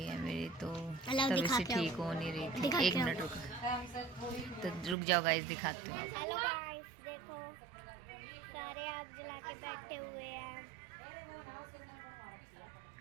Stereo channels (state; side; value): drops out; left; at 5.0 s